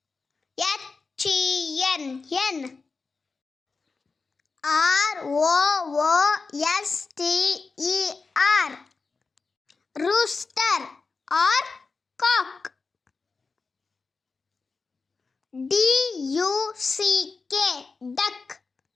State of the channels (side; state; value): right; quieter; 4.4 dB